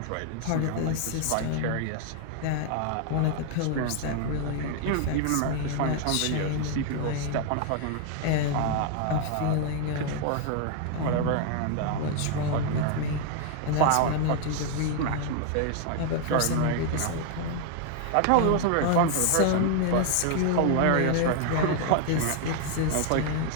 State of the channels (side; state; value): both; different; correlation 0.00